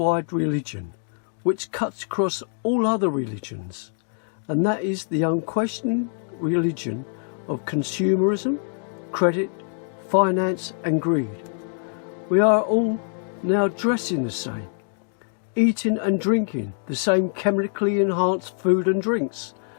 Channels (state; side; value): silent; right; digital silence